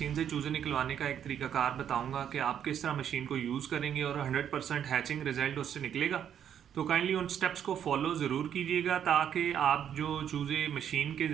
से चूज़े निकलवाने का एक तरीकाकार बताऊंगा कि आप किस तरह मशीन को यूज़ करेंगे और 100% हैचिंग रिजल्ट उससे निकलेगा। तो काइंडली उन स्टेप्स को फॉलो ज़रूर कीजिएगा ताकि आप जो चूज़े मशीन के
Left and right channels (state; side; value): quieter; left; 9.2 dB